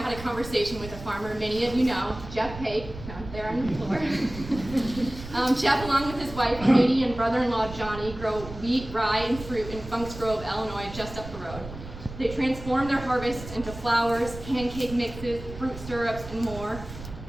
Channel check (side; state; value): right; noise; rumble, 12 dB below the sound